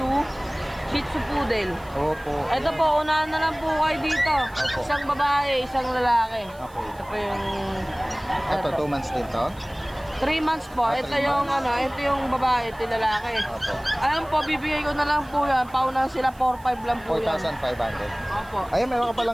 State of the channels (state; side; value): noise; right; hiss, 26 dB below the sound